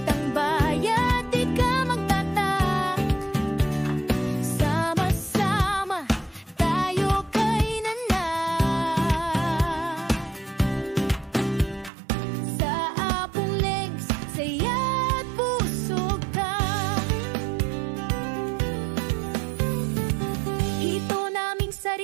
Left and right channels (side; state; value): left; drops out; at 11.9 s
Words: ang bayad, di ka magtatak. Sama-sama tayo kay nanak. Sa Abong Lengs, saya't busog ka. Hito naming